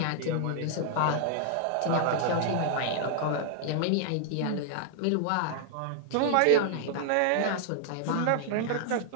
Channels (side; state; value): both; different; correlation 0.00